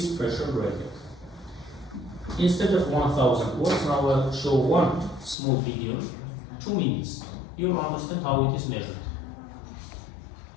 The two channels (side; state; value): right; drops out; at 5.4 s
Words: pressure gradient. Instead of 1000 words, now I'll show one small video, 2 minutes. You will understand how it is measured.